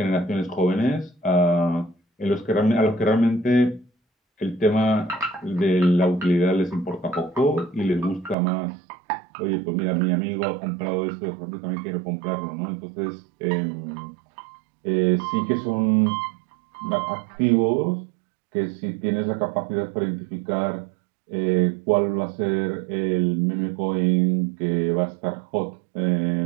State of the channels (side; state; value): left; drops out; at 8.3 s